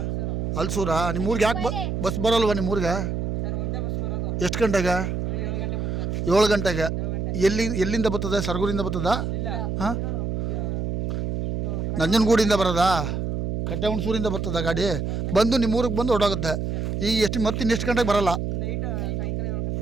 ಹಲ್ಸೂರಾ? ನಿಮ್ಮ ಊರಿಗೆ ಯಾಕೆ ಬಸ್ ಬರೋಲ್ವ ನಿಮ್ಮ ಊರಿಗೆ? ಎಷ್ಟು ಗಂಟೆಗೆ? 7 ಗಂಟೆಗೆ. ಎಲ್ಲಿಂದ ಬರ್ತದೆ? ಸರಗೂರಿಂದ ಬರ್ತದ? ಹಾಂ, ನಂಜನಗೂಡಿಂದ ಬರೋದಾ? ಕಟ್ಟೆ ಹುಣಸೂರಿಂದ ಬರ್ತದ ಗಾಡಿ? ಬಂದು ನಿಮ್ಮ ಊರಿಗೆ ಬಂದು ಹೊರಡೋಗುತ್ತೆ. ಈಗ ಮತ್ತೆ ಇನ್ನೆಷ್ಟು ಗಂಟೆಗೆ ಬರೋಲ್ಲ?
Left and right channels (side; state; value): right; noise; hum, 2 dB below the sound